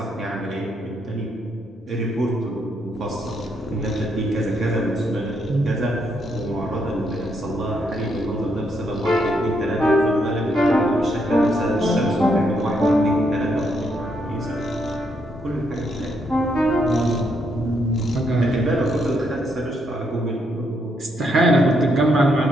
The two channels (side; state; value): both; normal; correlation 0.76